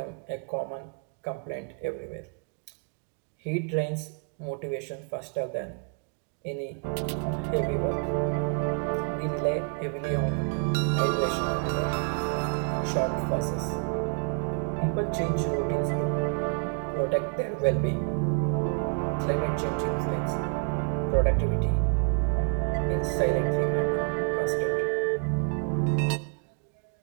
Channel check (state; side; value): quieter; left; 39.4 dB